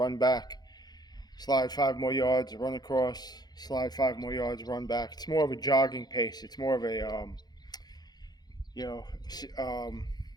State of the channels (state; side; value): late; right; 0.19 ms